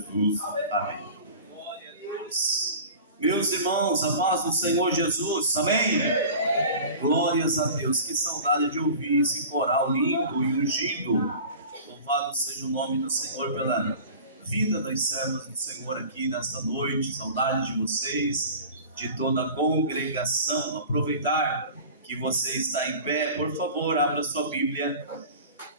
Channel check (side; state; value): both; inverted; correlation -0.39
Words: Amém. Glória a Deus. Meus irmãos, a paz do Senhor Jesus, amém? Glórias a Deus, que saudade de ouvir esse coral lindo e ungido. Louvado seja o nome do Senhor pela vida das servas do Senhor aqui nesta noite. Saudade de vocês, de toda a congregação. Aproveitar que você está em pé, por favor, abra sua Bíblia.